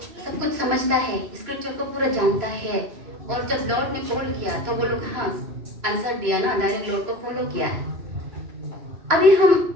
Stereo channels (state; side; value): late; left; 3.0 ms